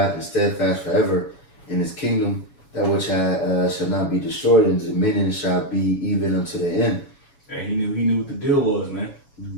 and steadfast forever in his kingdom. That which shall not be destroyed, and dominion shall be even unto the end. And he knew what the deal was, man.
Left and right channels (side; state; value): right; late; 7.1 ms